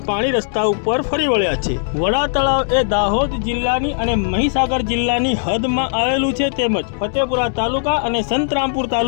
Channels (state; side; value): silent; right; digital silence